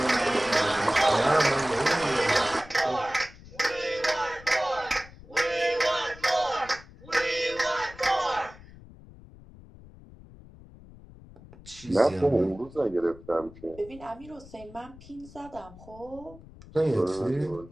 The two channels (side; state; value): left; noise; rumble, 20 dB below the sound